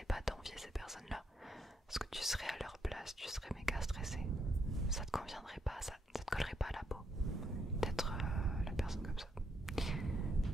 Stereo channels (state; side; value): normal; both; correlation 0.76